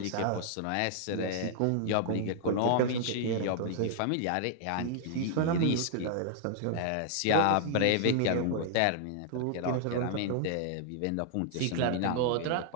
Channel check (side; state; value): both; different; correlation -0.01